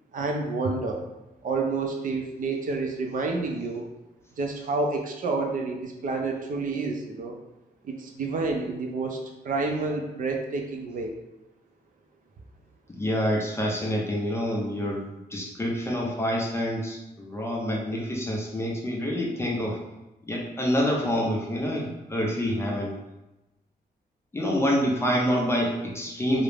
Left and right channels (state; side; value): normal; both; correlation 0.61